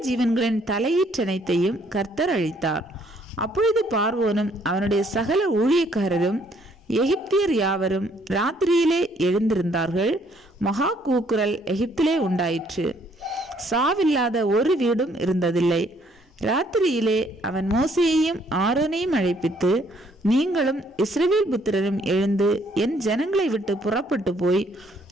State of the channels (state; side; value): normal; both; correlation 0.65